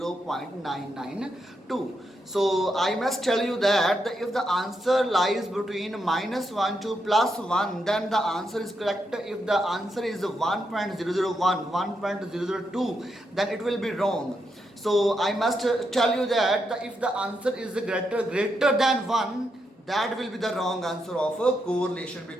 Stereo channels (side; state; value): both; normal; correlation 0.82